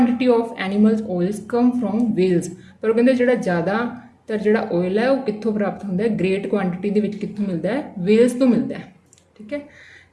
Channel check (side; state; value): both; identical; correlation 1.00